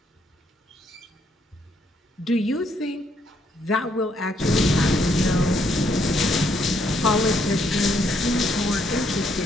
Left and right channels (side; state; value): both; normal; correlation 0.72